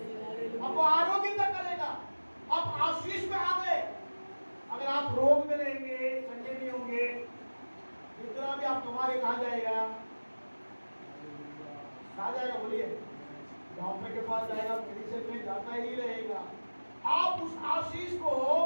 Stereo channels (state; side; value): inverted; both; correlation -1.00